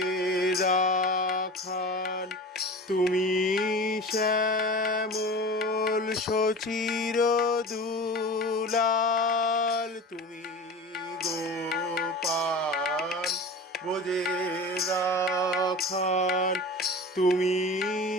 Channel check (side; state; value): both; normal; correlation 0.34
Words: রাখাল, তুমি শ্যামল সচির দুলাল। তুমি গোপাল ব্রজের রাখাল, তুমি